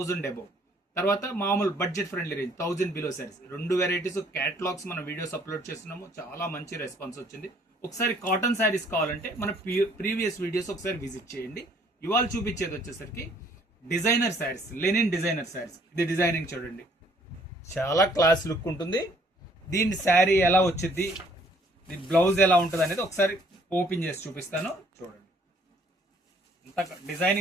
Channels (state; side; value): normal; both; correlation 0.61